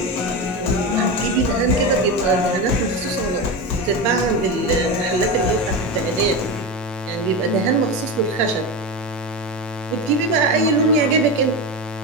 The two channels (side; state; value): both; normal; correlation 0.19